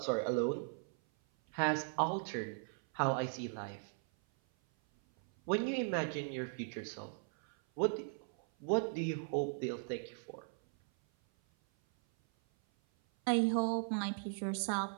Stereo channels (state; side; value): silent; left; 52 dB below the other